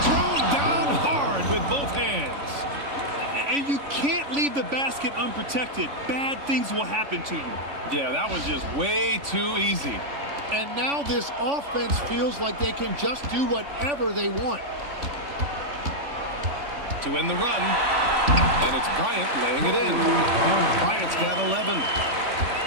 thrown down hard with both hands. And you can't leave the basket unprotected. Bad things will happen to you. Yeah, that was just way too easy. And now this offense feels like they can just do whatever they want. to win the run. And it's Bryant laying it in. Bryant's got 11.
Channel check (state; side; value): late; left; 3.5 ms